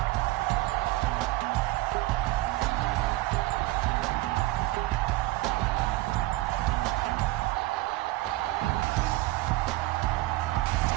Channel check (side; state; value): left; quieter; 19.0 dB